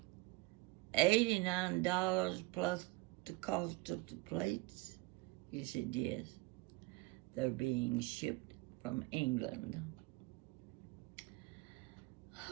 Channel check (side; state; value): left; quieter; 21.4 dB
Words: $89 plus the cost of the plates? He said, yes. They're being shipped from England.